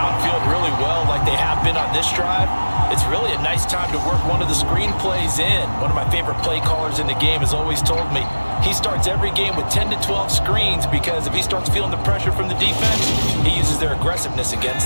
really well like they have been on this drive, it's really a nice time to work one of the screen plays in. One of my favorite play callers in the game has always told me he starts every game with 10 to 12 screens because if he starts feeling the pressure from the defense, he uses their aggressiveness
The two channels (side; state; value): both; inverted; correlation -1.00